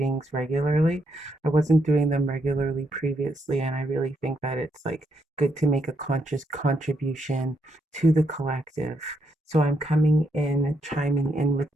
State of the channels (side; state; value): both; normal; correlation 0.78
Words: regularly. I wasn't doing them regularly previously, and I really think that it's like good to make a conscious contribution to the collective. So I'm coming in, chiming in with